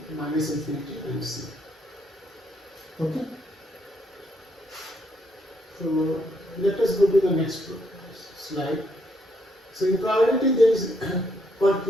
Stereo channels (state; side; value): normal; both; correlation 0.73